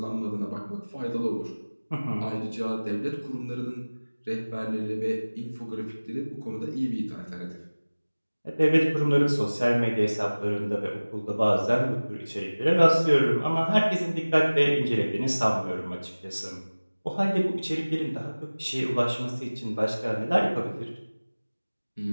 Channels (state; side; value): inverted; both; correlation -1.00